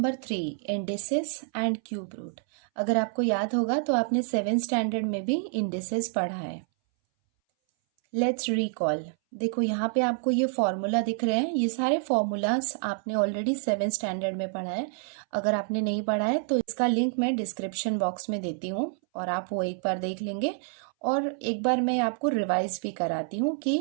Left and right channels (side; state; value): left; silent; 59 dB below the other